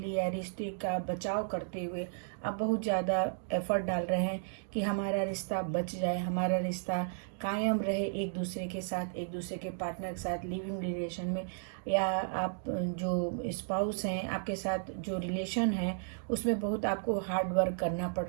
या रिश्ते का बचाव करते हुए आप बहुत ज़्यादा एफर्ट डाल रहे हैं कि हमारा रिश्ता बच जाए, हमारा रिश्ता कायम रहे एक दूसरे के साथ, एक दूसरे के पार्टनर के साथ लिविंग रिलेशन में, या आप जो स्पाउस हैं आपके साथ जो रिलेशन है उसमें बहुत आपको हार्ड वर्क करना पड़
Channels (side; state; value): left; silent; digital silence